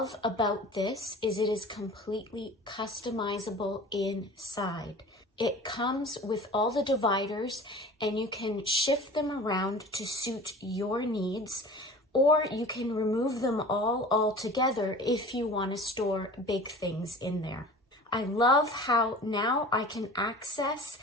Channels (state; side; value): normal; both; correlation 0.40